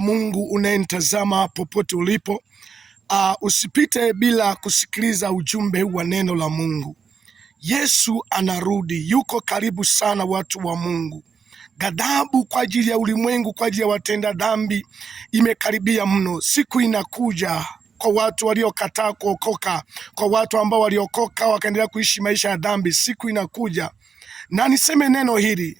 Mungu unayenitazama popote ulipo. Usipite bila kusikiliza ujumbe wa neno la Mungu. Yesu anarudi, yuko karibu sana, watu wa Mungu. Ghadhabu kwa ajili ya ulimwengu, kwa ajili ya watenda dhambi imekaribia mno. Siku inakuja kwa watu waliokataa kuokoka, kwa watu ambao waliokoka wakaendelea kuishi maisha ya dhambi. Siku inakuja, na niseme neno hili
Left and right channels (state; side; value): quieter; left; 6.1 dB